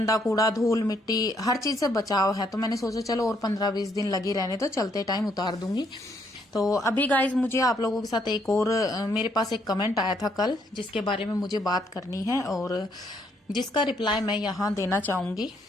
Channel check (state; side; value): normal; both; correlation 0.71